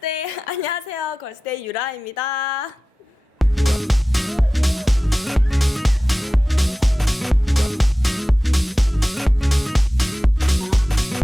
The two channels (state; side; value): normal; both; correlation 0.95